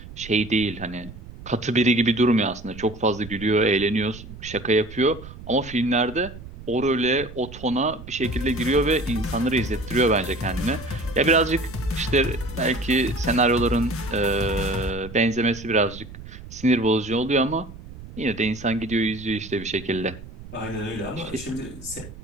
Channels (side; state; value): right; noise; rumble, 15 dB below the sound